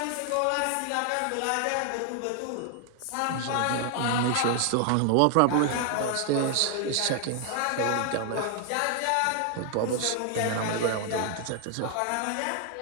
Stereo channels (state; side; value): different; both; correlation 0.00